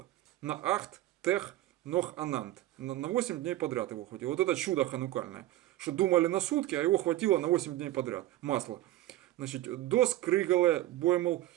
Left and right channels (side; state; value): left; quieter; 15.3 dB